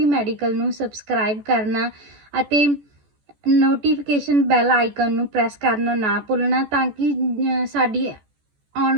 ਮੈਡੀਕਲ ਨੂੰ ਸਬਸਕ੍ਰਾਈਬ ਕਰਨਾ ਅਤੇ ਨੋਟੀਫਿਕੇਸ਼ਨ ਬੈਲ ਆਈਕਨ ਨੂੰ ਪ੍ਰੈਸ ਕਰਨਾ ਨਾ ਭੁੱਲਣਾ ਤਾਂ ਕਿ ਸਾਡੀ ਆਉਣ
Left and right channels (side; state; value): left; late; 14 ms